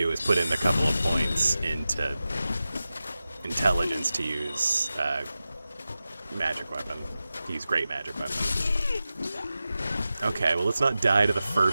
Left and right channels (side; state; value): both; inverted; correlation -0.94